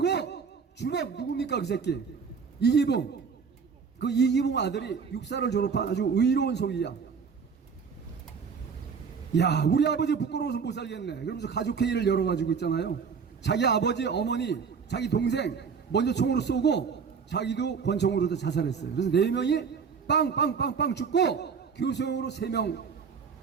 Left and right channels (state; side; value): quieter; left; 5.9 dB